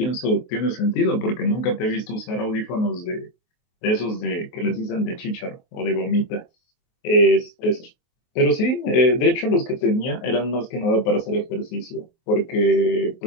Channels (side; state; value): right; late; 23 ms